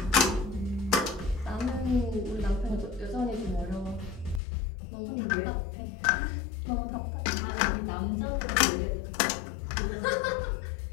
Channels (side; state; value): right; drops out; at 4.4 s